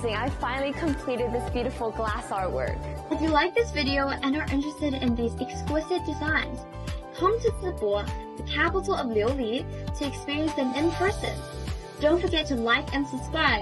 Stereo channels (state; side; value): identical; both; correlation 1.00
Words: I finally completed this beautiful glass artwork. If you like this video and are interested in these exquisite designs, come to Zibo, the capital of Liuli, to experience them in person. Don't forget to like and